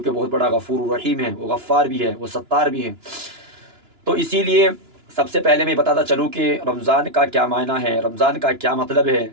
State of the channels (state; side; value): late; left; 2.9 ms